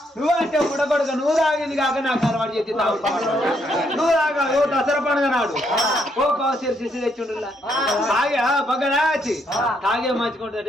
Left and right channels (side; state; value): both; normal; correlation 0.74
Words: నువ్వు అంటే ఉడబడుక నువ్వు తాగేది కాక నాకు అలవాటు చేసి నువ్వు తాగా ఓ దసరా పండుగ నాడు ఓ కాసేపు శిశు తెచ్చిండు తాగే బగ్గడా వచ్చి తాగే